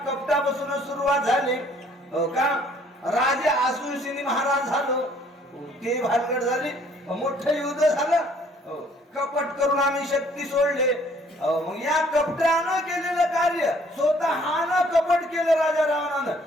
कपटापासून सुरुवात झाली. का राजे आसुरसिनी महाराज झालो ते भानगड झाली. मोठं युद्ध झालं. कपट करून आम्ही शक्ती सोडले. मग या कपटानं केलेलं कार्य स्वतःनं कपट केलं राजा रावणानं.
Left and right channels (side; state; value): both; normal; correlation 0.60